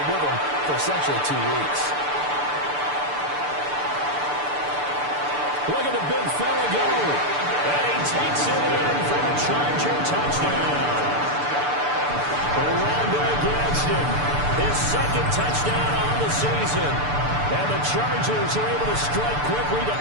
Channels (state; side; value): late; left; 6.8 ms